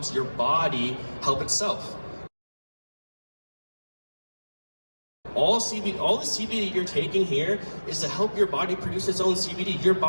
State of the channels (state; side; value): inverted; both; correlation -1.00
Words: your body help itself. All the CBD you're taking here is to help your body produce its own CBD. Your